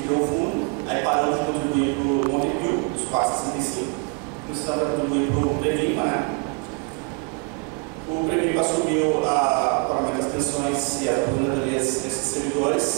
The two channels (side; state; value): left; quieter; 32.9 dB